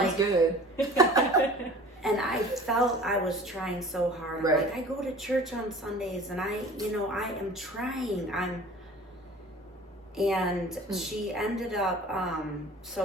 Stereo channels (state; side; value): normal; both; correlation 0.44